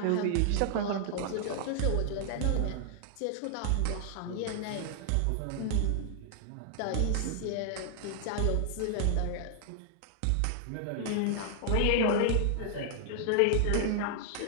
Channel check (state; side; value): different; both; correlation 0.00